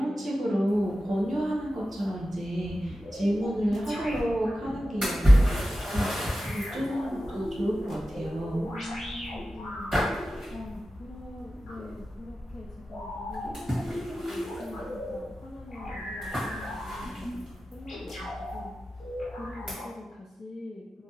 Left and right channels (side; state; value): both; normal; correlation 0.93